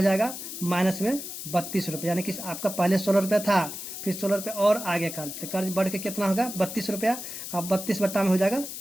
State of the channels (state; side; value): noise; left; hiss, 8 dB below the sound